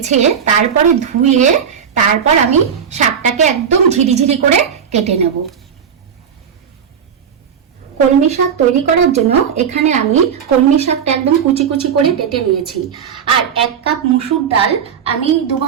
তারপরে ধুয়ে তারপর আমি শাকটাকে একদম ঝিরিঝিরি করে কেটে নেব। কলমি শাক তৈরি করার জন্য এখানে আমি কলমি শাকটা একদম কুচি কুচি করে কেটে নিয়েছি। আর 1 কাপ মসুর ডাল আমি 2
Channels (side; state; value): left; quieter; 7.6 dB